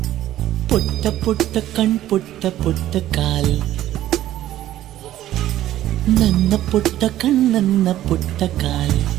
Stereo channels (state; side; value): quieter; left; 13.4 dB